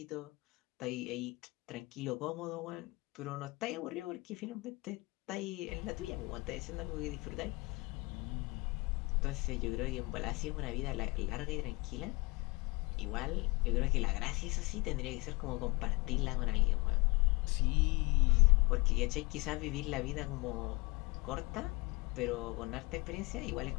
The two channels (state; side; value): quieter; right; 25.4 dB